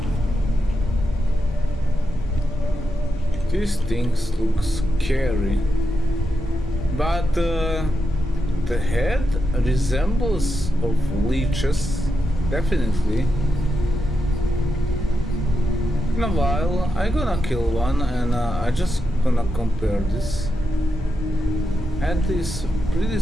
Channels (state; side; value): normal; both; correlation 0.86